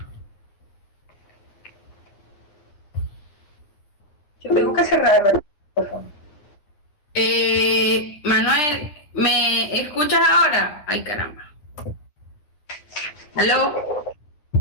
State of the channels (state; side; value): late; right; 10 ms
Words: Yo tengo que cerrar el micrófono. Manuel, ¿me escuchas ahora? Ay, caramba. ¿Aló?